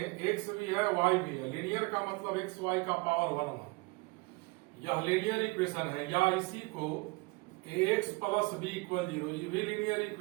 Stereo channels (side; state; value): left; quieter; 26.9 dB